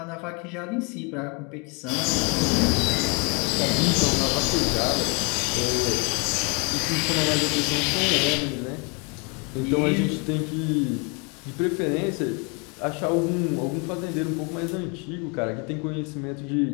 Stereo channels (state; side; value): quieter; right; 32.4 dB